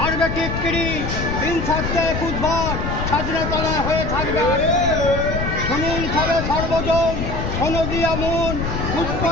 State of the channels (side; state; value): left; noise; rumble, 3 dB below the sound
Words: টিটকিরি, দিন থাকতে বুধবার স্বাধীনতলায় হয়ে থাকবে। শুনুন সবে সর্বজন, শোনো দিয়া মন,